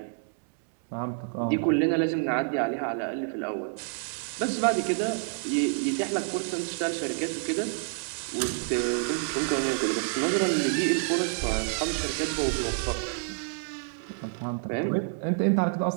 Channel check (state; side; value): silent; left; digital silence